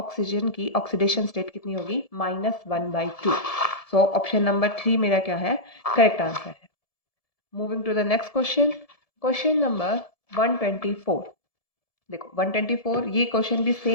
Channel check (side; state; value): right; late; 1.7 ms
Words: की ऑक्सीडेशन स्टेट कितनी होगी? -1/2। सो ऑप्शन नंबर 3 मेरा क्या है? करेक्ट आंसर है। Moving to the next question, question number 124। देखो 124 ये क्वेश्चन भी